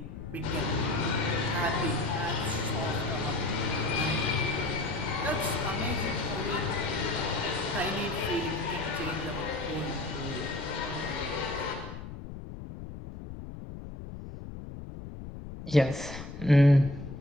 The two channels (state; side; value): noise; left; rumble, 10 dB below the sound